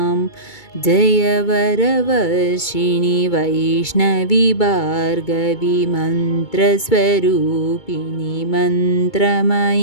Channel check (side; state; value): right; late; 2.2 ms